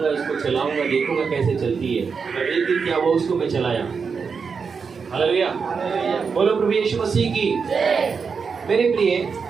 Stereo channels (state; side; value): quieter; left; 5.6 dB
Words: इसको चलाऊंगा, देखूंगा कैसे चलती है। और एक दिन क्या हुआ, उसको मैं चलाया। हालेलुया। बोलो प्रभु यीशु मसीह की। मेरे प्रिय,